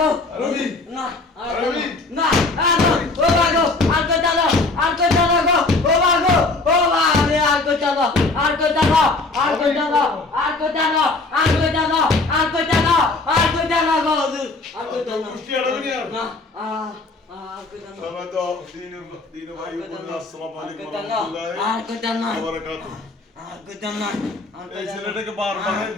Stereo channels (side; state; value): right; quieter; 3.4 dB